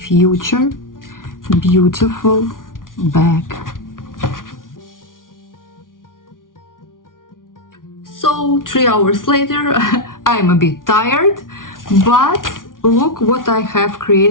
beautiful bag. So 3 hours later, I'm a bit tired, but look what I have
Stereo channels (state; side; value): late; right; 0.89 ms